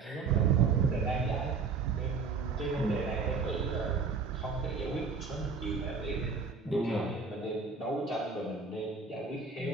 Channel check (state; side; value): quieter; left; 4.8 dB